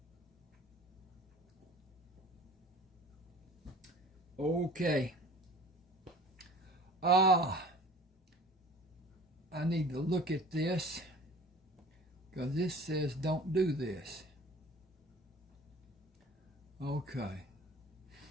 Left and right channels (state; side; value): normal; both; correlation 0.45